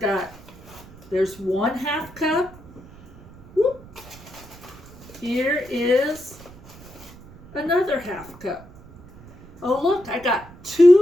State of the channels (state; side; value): noise; right; rumble, 21 dB below the sound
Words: There's 1/2 cup. Whoop. Here is another 1/2 cup. Oh, look, I got